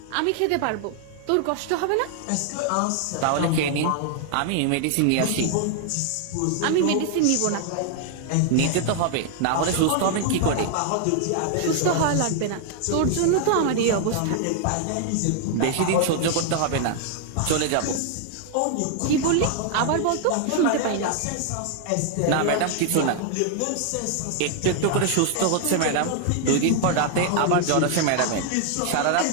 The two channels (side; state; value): both; different; correlation 0.00